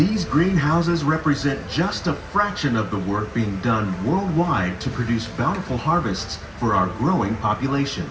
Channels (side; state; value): both; identical; correlation 1.00